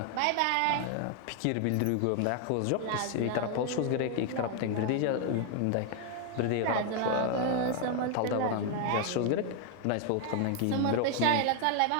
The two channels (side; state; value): both; different; correlation 0.00